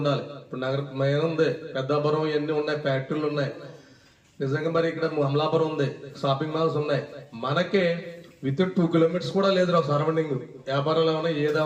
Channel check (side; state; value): both; identical; correlation 1.00